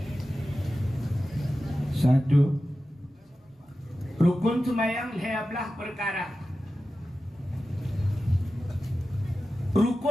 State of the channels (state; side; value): normal; both; correlation 0.93